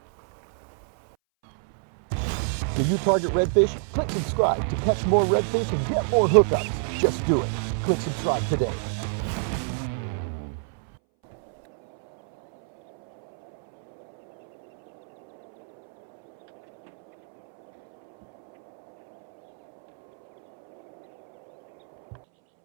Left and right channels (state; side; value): silent; left; 61 dB below the other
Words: Do you target redfish? Click subscribe to catch more redfish and get more hookups. Just do it. Click subscribe today.